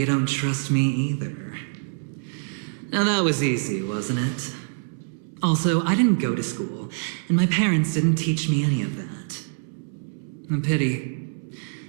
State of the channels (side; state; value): left; silent; 62 dB below the other